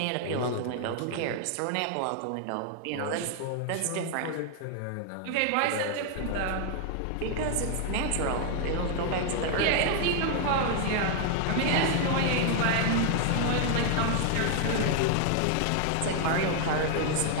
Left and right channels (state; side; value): different; both; correlation 0.00